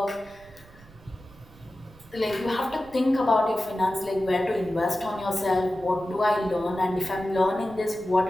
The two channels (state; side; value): noise; right; rumble, 23 dB below the sound